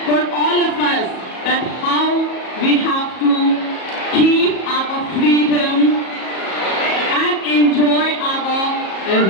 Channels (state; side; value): late; right; 37 ms